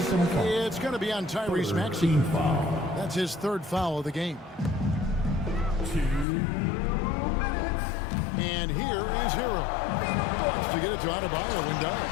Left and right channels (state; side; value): drops out; right; at 6.2 s